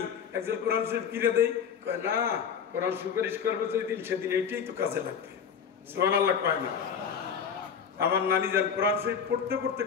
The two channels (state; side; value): quieter; right; 7.2 dB